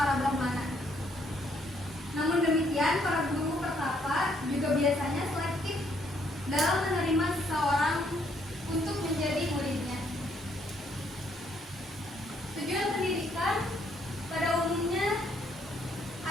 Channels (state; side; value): normal; both; correlation 0.70